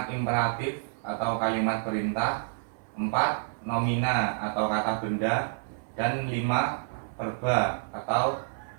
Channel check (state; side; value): silent; left; digital silence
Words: imperatif atau kalimat perintah, 4. Nomina atau kata benda, dan 5. Verba atau